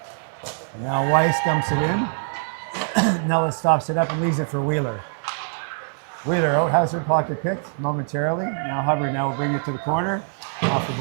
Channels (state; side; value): silent; left; 61 dB below the other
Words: Now Weiss dumps it in. Nellis stops it up and leaves it for Wheeler. Wheeler out, has her pocket picked momentarily. Now Hubbard now will bring it to the corner, off the